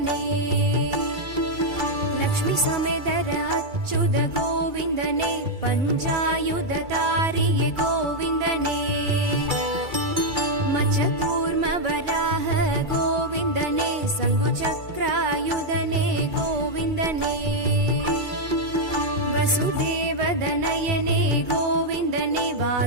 ಲಕ್ಷ್ಮೀ ಸಮೇತರ ಅಚ್ಯುತ ಗೋವಿಂದನೇ, ಪಂಚಾಯುಧ ತಾರಿಯ ಗೋವಿಂದನೇ, ಮಚಕೂರ್ಮ ವರಾಹ ಗೋವಿಂದನೇ, ಶಂಖುಚಕ್ರಾಯುಧನೇ ಗೋವಿಂದನೇ, ವಸುದೇವದನಯನೇ ಗೋವಿಂದನೇ,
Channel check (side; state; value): left; late; 2.3 ms